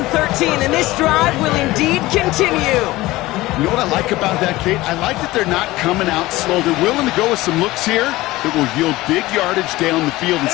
13, and this drive will indeed continue. You know what I like about that, Kate? I like that they're not coming out slow. They're willing to go with some looks here that will yield big yardage down the field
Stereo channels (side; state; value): right; quieter; 18.5 dB